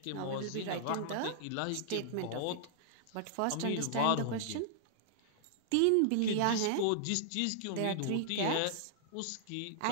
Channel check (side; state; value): both; different; correlation -0.01